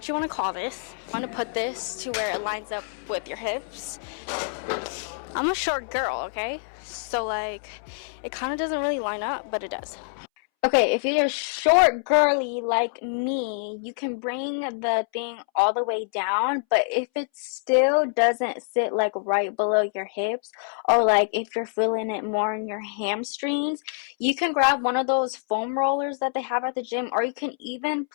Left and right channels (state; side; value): silent; right; 61 dB below the other